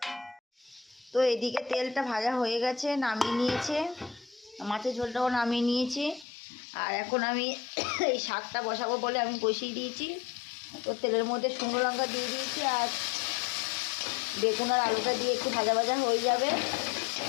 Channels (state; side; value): drops out; right; at 6.2 s